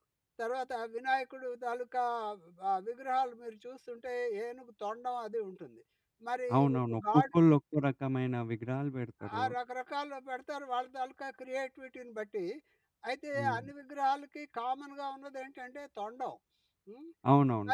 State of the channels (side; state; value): both; identical; correlation 1.00